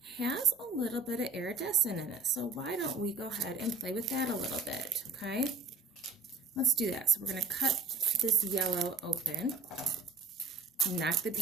has a little bit of iridescent in it. So why don't we go ahead and play with that a little bit, okay? Let's do that. So we're going to cut this yellow open, knock the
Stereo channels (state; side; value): quieter; left; 3.9 dB